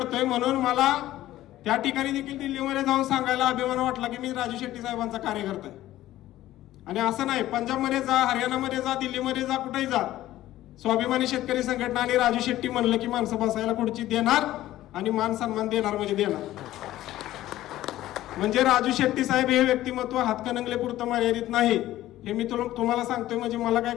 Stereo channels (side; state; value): right; quieter; 14.7 dB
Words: म्हणून मला त्या ठिकाणी देखील दिल्लीमध्ये जाऊन सांगायला अभिमान वाटला की मी राजू शेट्टी साहेबांचा कार्यकर्ता आहे. आणि असं नाही, पंजाबमध्ये जा, हरियाणामध्ये जा, दिल्लीमध्ये जा, कुठेही जा, स्वाभिमानी शेतकरी संघटना आणि राजू शेट्टी म्हणलं की माणसं बसायला खुर्ची देणार आणि मान सन्मान देणार म्हणजे देणार. म्हणजे राजू शेट्टी साहेब हे व्यक्तिमत्व हातकणंगले पुरतं मर्यादित नाही, हे मी तुम्हाला सांगतोय. म्हणजे मला काय